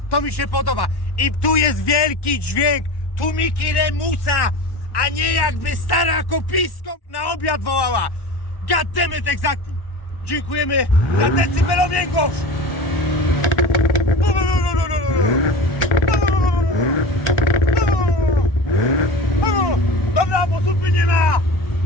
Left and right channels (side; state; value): right; late; 1.1 ms